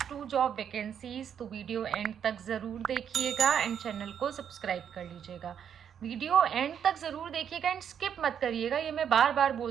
2 जॉब वैकेंसीज, तो वीडियो एंड तक ज़रूर देखिएगा एंड चैनल को सब्सक्राइब कर लीजिएगा। वीडियो एंड तक ज़रूर देखिएगा एंड स्किप मत करिएगा, ये मैं बार बार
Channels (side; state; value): left; quieter; 8.4 dB